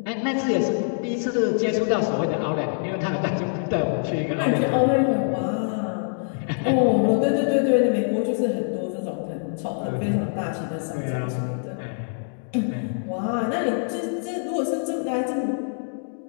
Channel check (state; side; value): silent; right; digital silence